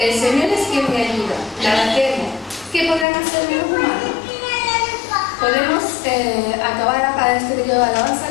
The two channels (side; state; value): right; drops out; at 3.1 s